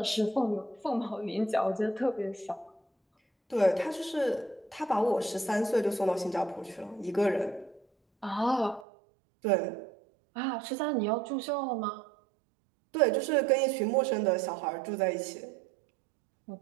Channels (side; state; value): left; drops out; at 8.8 s